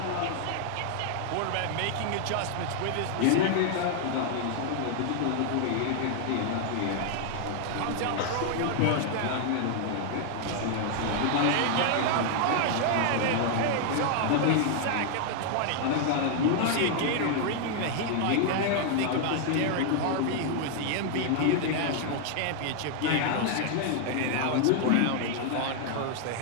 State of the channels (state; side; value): different; both; correlation 0.00